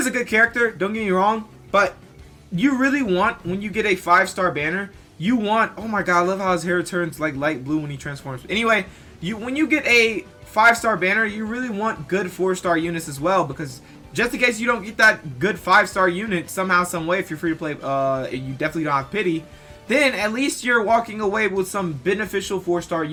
a good character. Don't get me wrong. But you really want, when you get a 5-star banner, you want, oh my god, I love how his hair turns like light blue when he transforms. Anyway, when you get a 5-star banner, you really want good 4-star units as well, because just in case you don't get that good 5-star unit somehow, some way, if you're free to play, you definitely don't have pity, then at least you're walking away with some beneficial 4-star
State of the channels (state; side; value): identical; both; correlation 1.00